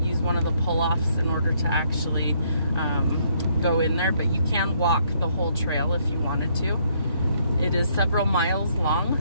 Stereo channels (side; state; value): both; inverted; correlation -0.70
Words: one of the pull-offs in order to actually go in there, but you can walk the whole trail if you wanted to. It is several miles long,